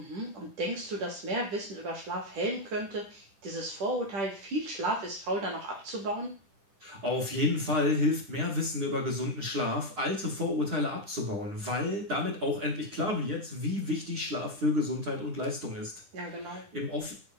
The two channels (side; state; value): left; late; 10 ms